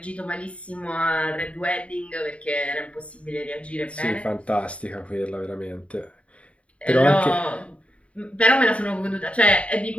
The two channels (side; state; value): right; late; 0.063 ms